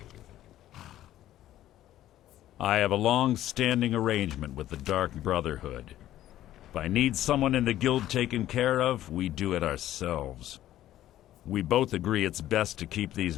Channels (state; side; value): quieter; right; 13.2 dB